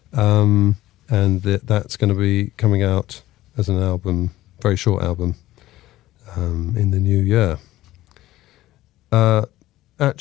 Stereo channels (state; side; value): quieter; right; 15.8 dB